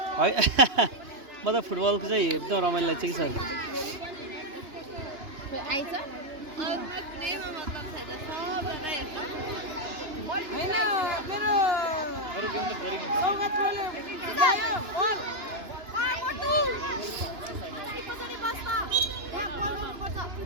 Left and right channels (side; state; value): left; late; 2.9 ms